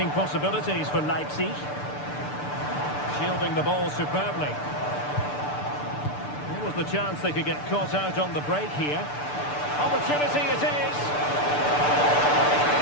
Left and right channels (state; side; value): late; right; 6.8 ms